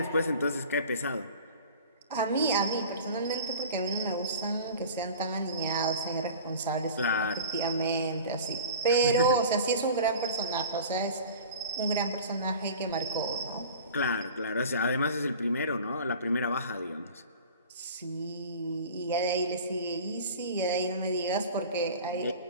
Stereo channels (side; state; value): both; inverted; correlation -0.39